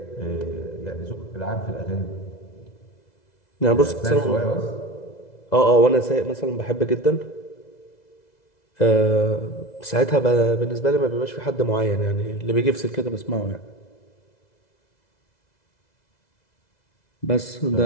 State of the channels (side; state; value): right; late; 2.0 ms